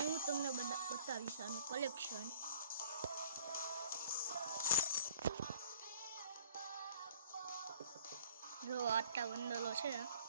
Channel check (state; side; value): inverted; both; correlation -0.51